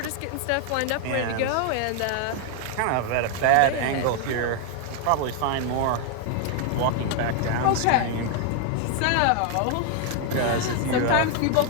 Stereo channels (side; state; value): both; different; correlation 0.00